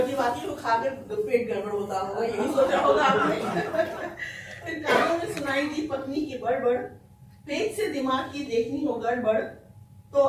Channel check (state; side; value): identical; both; correlation 1.00